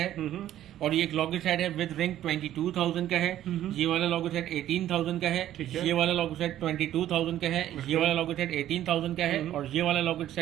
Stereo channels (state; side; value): quieter; left; 12.4 dB